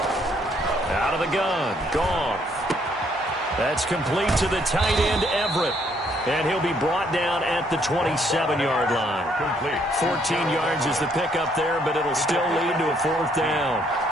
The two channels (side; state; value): both; normal; correlation 0.68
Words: Out of the gun, Goff. That's complete to the tight end, Everett. And he'll be brought down at the 27-yard line. Complete. 14 yards is the pickup there, but it'll still lead to a 4th down.